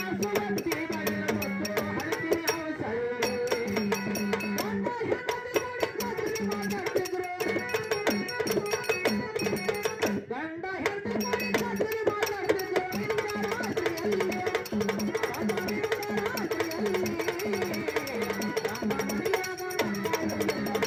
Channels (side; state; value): both; identical; correlation 1.00